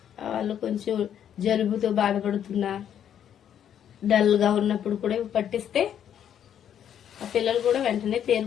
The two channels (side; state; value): right; quieter; 9.5 dB